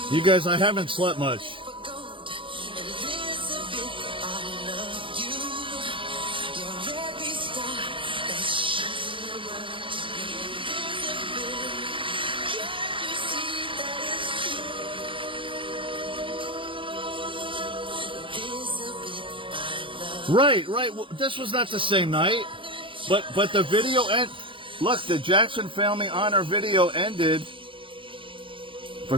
You guys, I haven't slept much. Right. Well, this was not the same night, but the video end. Look, the Jackson Family Honor video ended for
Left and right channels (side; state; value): left; late; 0.25 ms